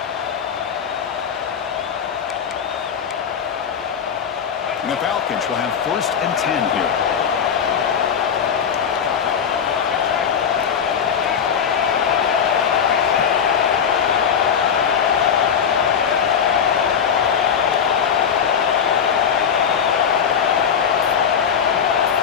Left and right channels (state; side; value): quieter; right; 7.5 dB